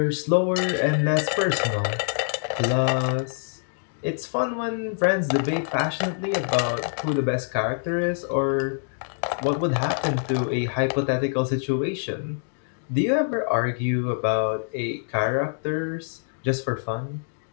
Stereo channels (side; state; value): right; silent; 62 dB below the other